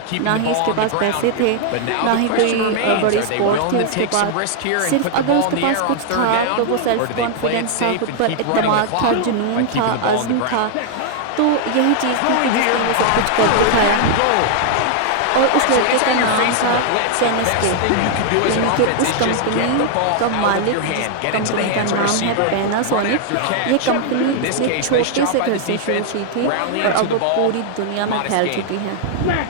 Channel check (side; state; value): both; different; correlation 0.00